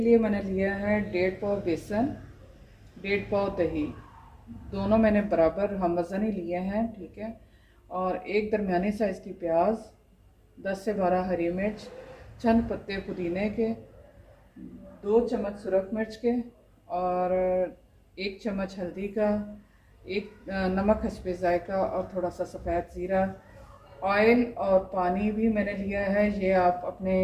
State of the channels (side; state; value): both; identical; correlation 1.00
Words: लिए मैंने लिया है 1.5 पाव बेसन, 1.5 पाव दही। दोनों मैंने बराबर हम वज़न ही लिए हैं, ठीक है। और एक दरमियानी साइज़ की प्याज, 10 से 12 हरी मिर्च, चंद पत्ते पुदीने के, 2 चम्मच सुरख मिर्च के, और 1 चम्मच हल्दी का, एक नमक हस्बे ज़ायका, और थोड़ा सा सफ़ेद ज़ीरा। ऑयल और पानी भी मैंने लिया है, ये आप अपने